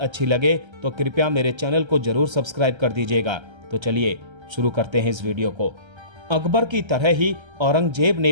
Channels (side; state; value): left; late; 1.3 ms